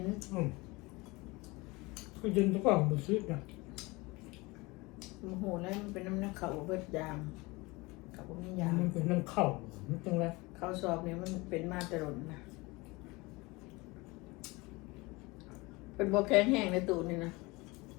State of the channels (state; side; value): quieter; right; 23.8 dB